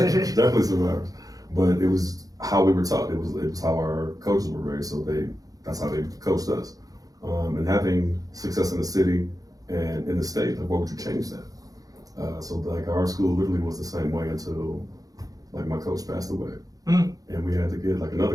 Definitely survivors. But it was how we were taught. It was how our coaches were raised. So that's how they coached us. And having success in the city and in the state, like, what would you change that? So like our school literally was the same way until like my coach passed away. And we had to get like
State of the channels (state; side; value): late; left; 0.17 ms